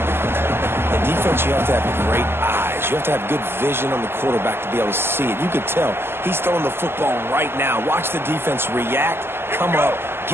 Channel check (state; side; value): late; left; 0.11 ms